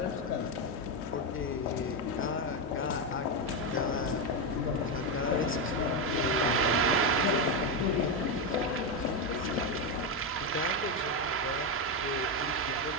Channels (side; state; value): both; normal; correlation 0.08